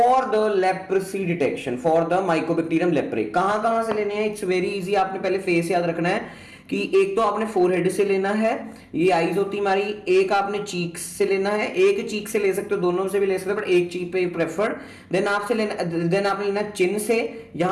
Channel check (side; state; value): both; identical; correlation 1.00